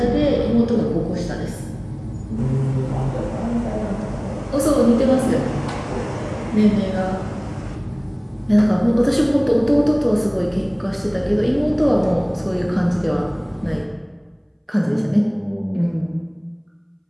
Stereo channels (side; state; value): both; identical; correlation 1.00